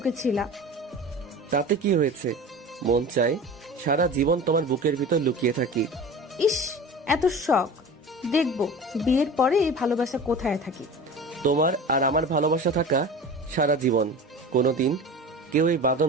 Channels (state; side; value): normal; both; correlation 0.35